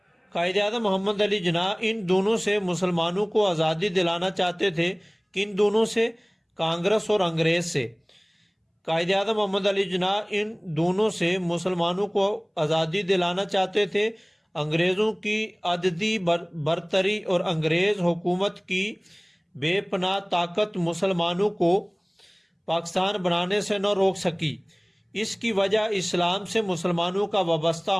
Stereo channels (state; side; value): identical; both; correlation 1.00